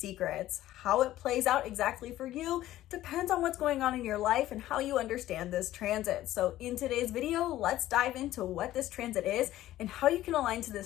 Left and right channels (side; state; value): right; quieter; 14.4 dB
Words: How it plays out exactly for you depends on what's going on in your life and how you understand this transit. So in today's video, let's dive into what this transit is and how you can align to